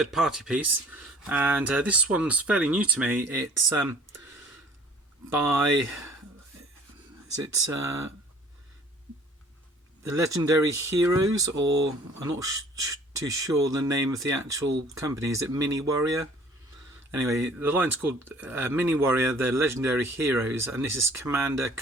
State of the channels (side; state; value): both; normal; correlation 0.52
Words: piece, and this one's fairly new to me. It's by the Legendary Heroes, or I'm not too sure the name of the actual company. Is it Mini Warrior? Anyway, the line's called Mini Warrior, the Legendary Heroes, and this is Commander